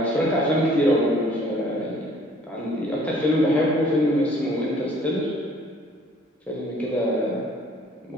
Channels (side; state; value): both; normal; correlation 0.57